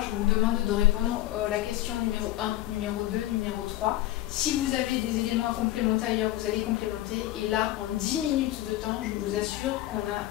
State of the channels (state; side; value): quieter; right; 15.2 dB